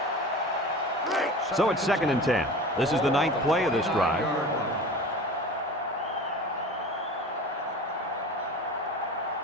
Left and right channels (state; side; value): normal; both; correlation 0.35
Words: So it's 2nd and 10. This is the 9th play of this drive.